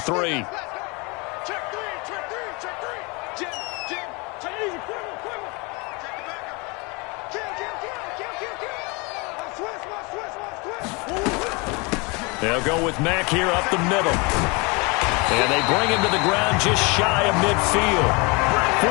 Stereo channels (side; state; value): right; quieter; 28.8 dB